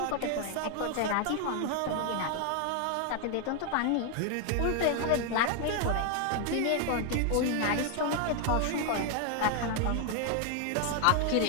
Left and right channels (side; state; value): both; different; correlation 0.00